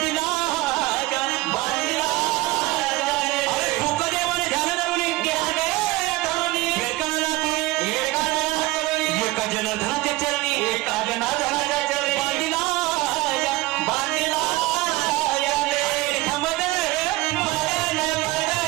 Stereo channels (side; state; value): left; quieter; 19.5 dB